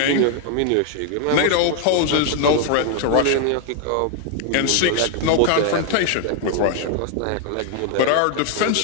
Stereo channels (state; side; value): different; both; correlation 0.00